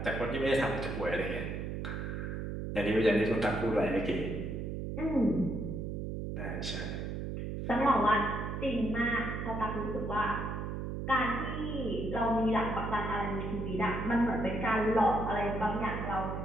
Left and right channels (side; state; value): right; noise; hum, 4 dB below the sound